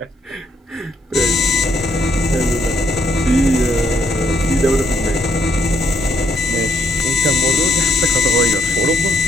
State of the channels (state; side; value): normal; both; correlation 0.70